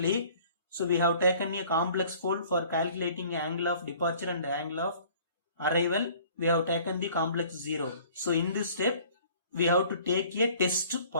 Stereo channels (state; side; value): inverted; both; correlation -0.51